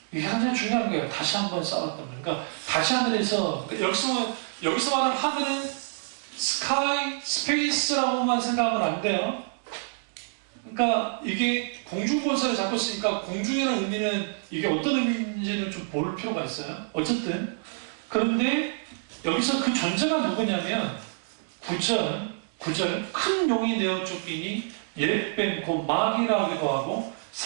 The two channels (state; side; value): silent; left; digital silence